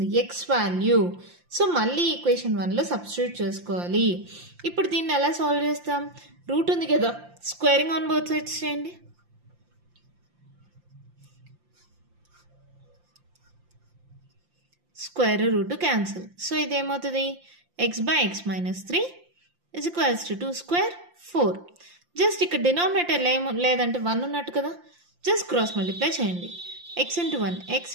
x వాల్యూ. సో మళ్ళీ ఈక్వేషన్ 1లో సబ్స్టిట్యూట్ చేసుకోవాలి. ఇప్పుడు దీన్ని ఎలా సాల్వ్ చేస్తాం? రూట్ ఉంది కదా, స్క్వేరింగ్ ఆన్ బోత్ సైడ్స్ చేయండి. Square root cancel. సో ఇదేమవుతుంది x/x-3 = 2² 4. జస్ట్ ఇక్కడ డినామినేటర్ లేదంటే 1 ఉన్నట్టు కదా, జస్ట్ క్రాస్ మల్టిప్లై చేయండి. x × 1 x =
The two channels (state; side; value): late; left; 5.7 ms